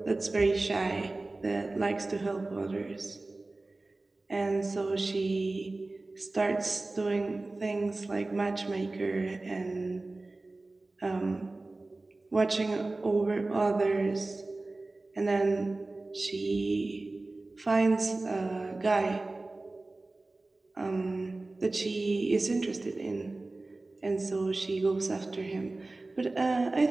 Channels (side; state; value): left; quieter; 3.1 dB